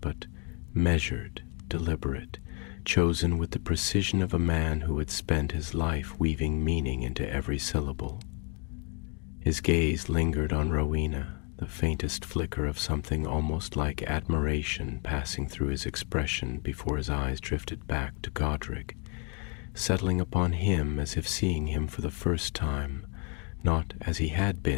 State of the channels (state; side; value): quieter; right; 36.4 dB